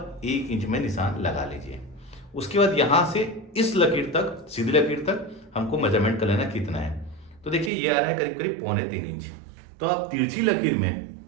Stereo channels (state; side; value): drops out; left; at 7.7 s